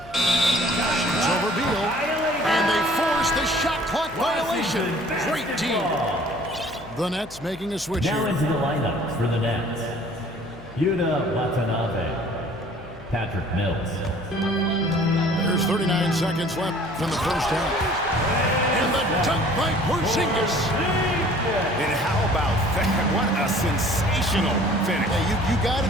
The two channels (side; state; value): left; noise; hum, 20 dB below the sound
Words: over Beal. And they force the shot clock violation. Great team. The Nets making a switch Now here. into the lineups for the Nets. Yuta Watanabe. Patrick Mills. There's 39 seconds left in the first half. And the dunk by Porzingis. And how about that? What a sensational finish. Hey, you got to